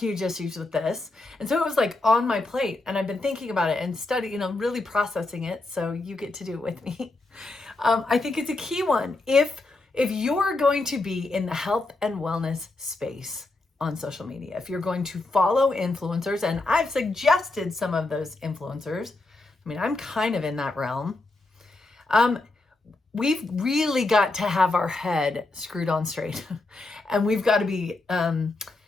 issues with this. And so it was like on my plate, and I've been thinking about it and studying, really processing it. So you get to do it with me. I think it's a key one. If you're going to be in the health and wellness space on social media, if you're going to follow influencers, and I've suggested some of those influencers, I'm kind of in that realm. We've really got to have our head screwed on straight and we've got to be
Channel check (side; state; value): right; quieter; 3.1 dB